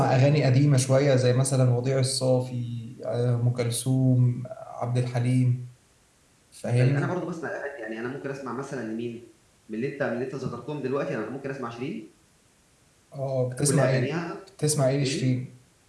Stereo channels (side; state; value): both; identical; correlation 1.00